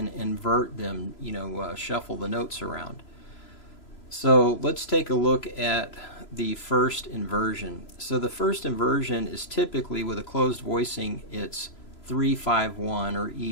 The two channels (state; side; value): late; right; 3.0 ms